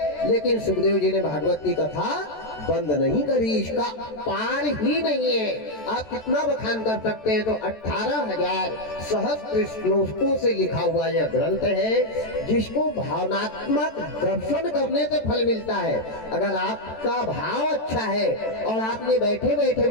लेकिन सुखदेव जी ने भागवत की कथा बंद नहीं करी। इसका पार ही नहीं है। आप कितना बखान कर सकते हैं। तो 18,000 सहस्त्र श्लोकों से लिखा हुआ यह ग्रंथ है, जिसको भावनात्मक दर्शन करने से फल मिलता है। अगर आपका भाव अच्छा है और आपने बैठे बैठे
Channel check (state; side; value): late; right; 14 ms